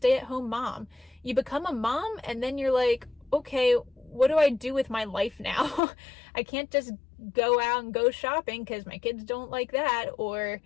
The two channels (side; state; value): right; drops out; at 5.8 s